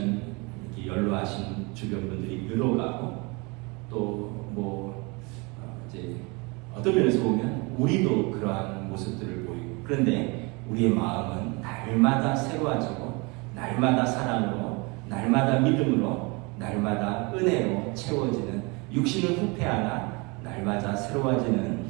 이렇게 연로하신 주변 분들이 늘어가고 또 이제 어떤 면에서 보면 우리도 그러한 모습들을 보이고, 그런데 우리의 마음은 날마다 새로워지고 날마다 사랑으로 날마다 믿음으로 날마다 은혜로 채워지는, 육신은 후패하나 날마다 새로워지는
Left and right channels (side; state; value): left; quieter; 28.3 dB